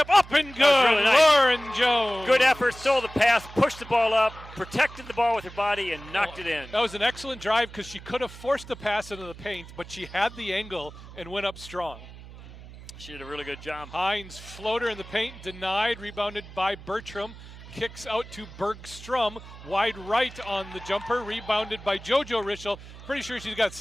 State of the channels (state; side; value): noise; right; hum, 16 dB below the sound